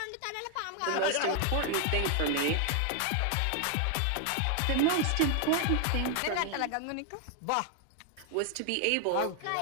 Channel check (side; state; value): both; different; correlation 0.00